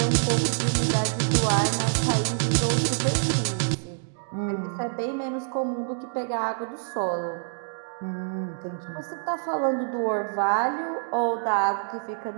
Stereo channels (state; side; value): silent; left; digital silence